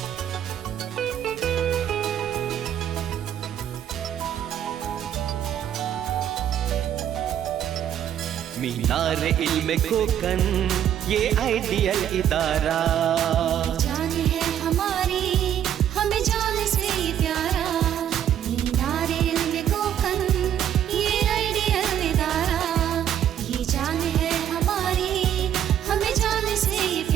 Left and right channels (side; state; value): left; quieter; 10.1 dB